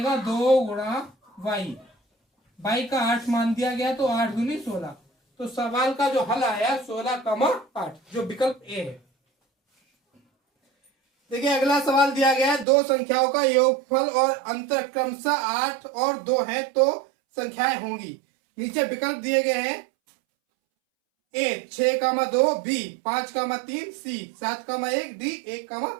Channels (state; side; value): drops out; left; at 12.7 s